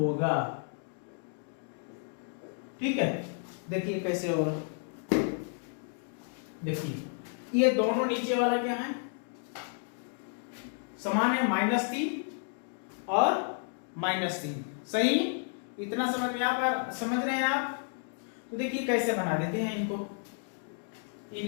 ठीक है, देखिए कैसे होगा। देखिए ये दोनों नीचे वाला क्या है? समान है, -3 और -3। सही, इतना समझ में आप समझ रहे हैं आप? तो देखिए कैसे बना देते हैं इनको,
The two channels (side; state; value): right; silent; 57 dB below the other